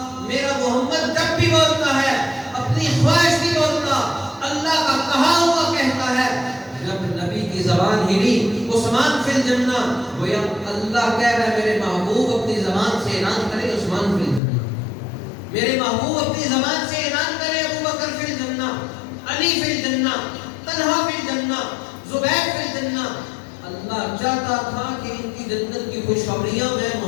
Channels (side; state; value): right; drops out; at 14.4 s